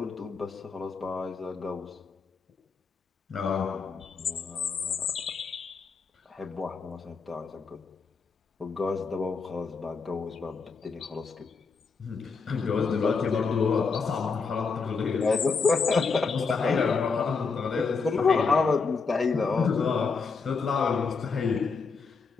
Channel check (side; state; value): right; quieter; 4.9 dB